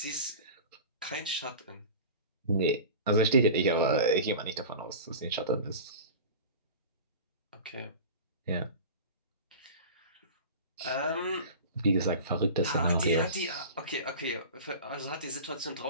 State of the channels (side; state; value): both; inverted; correlation -0.34